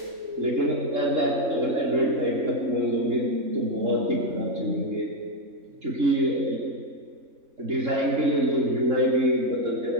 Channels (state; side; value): late; left; 3.7 ms